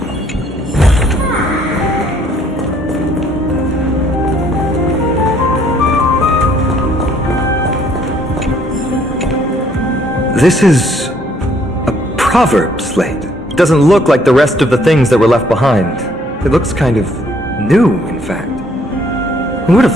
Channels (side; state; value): both; normal; correlation 0.64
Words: This is a proverb slate. It doesn't look like the rest of the things that were left behind. It looks kind of new, in fact. Who would